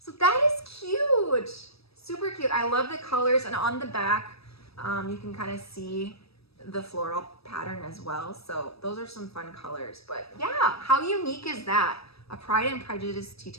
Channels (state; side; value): late; right; 0.78 ms